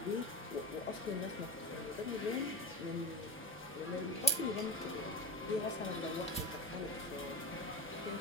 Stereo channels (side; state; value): both; normal; correlation 0.20